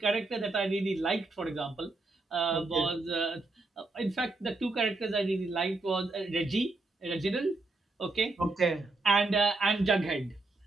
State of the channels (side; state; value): left; quieter; 3.3 dB